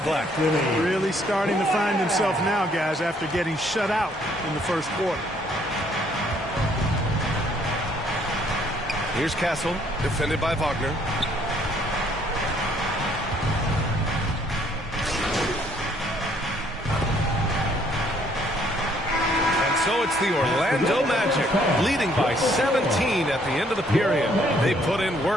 left. Really starting to find himself now, guys, after getting shut out in the first quarter. Here's Castle, defended by Wagner. So it's the Orlando Magic, leading by 17 at the end of the period. They put in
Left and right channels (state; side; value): normal; both; correlation 0.65